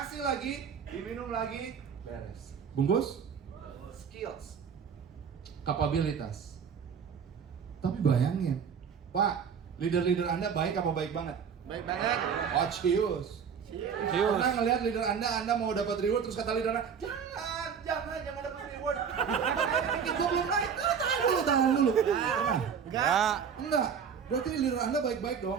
lagi, diminum lagi, beres. Bungkus? Skills. Kapabilitas. Tapi bayangin, Pak, leader-leader Anda baik apa baik banget? Baik banget. Oh, cius. Cius. Pernah ngeliat leader Anda mau dapat reward, terus kata leader Anda, jangan dapat reward. Dikit gua belum naik. Tahan dulu. Enggak. Berarti leader Anda baik-baik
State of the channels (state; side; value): quieter; left; 7.0 dB